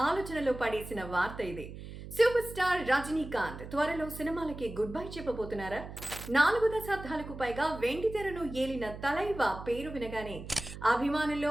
ఆలోచనలో పడేసిన వార్త ఇది. సూపర్ స్టార్ రజనీకాంత్ త్వరలో సినిమాలకి గుడ్ బై చెప్పబోతున్నారా? 4 దశాబ్దాలకు పైగా వెండితెరను ఏలిన తలైవా పేరు వినగానే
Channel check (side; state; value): right; noise; hum, 12 dB below the sound